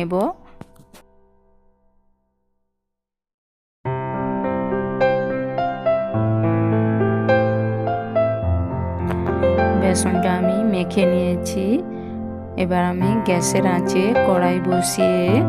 বেসনটা আমি মেখে নিয়েছি। এবার আমি গ্যাসের আঁচে কড়াই বসিয়ে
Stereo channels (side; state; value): both; identical; correlation 1.00